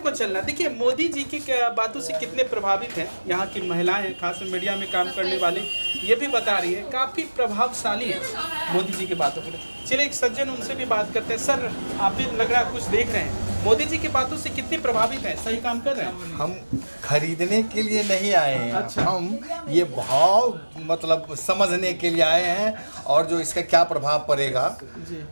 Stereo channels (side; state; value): both; inverted; correlation -1.00